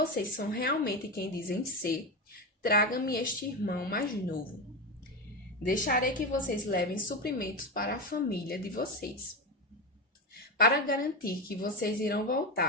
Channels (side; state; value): both; normal; correlation 0.16